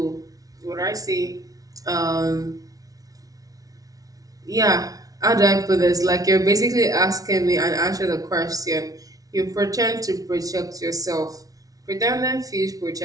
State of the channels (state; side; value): late; left; 0.18 ms